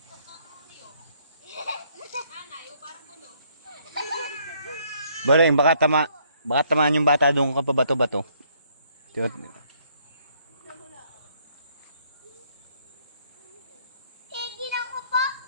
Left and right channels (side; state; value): both; inverted; correlation -0.67